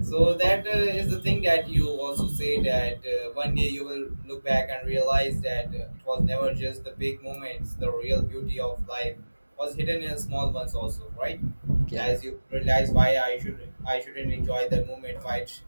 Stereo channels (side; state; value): both; inverted; correlation -1.00